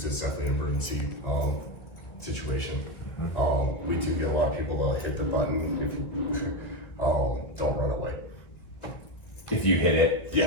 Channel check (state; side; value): late; right; 2.1 ms